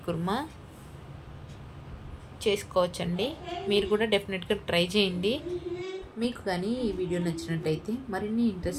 కుర్మా చేసుకోవచ్చండి. మీరు కూడా డెఫినెట్గా ట్రై చేయండి. మీకు కానీ ఈ వీడియో నచ్చినట్టయితే మరిన్ని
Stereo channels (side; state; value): both; identical; correlation 1.00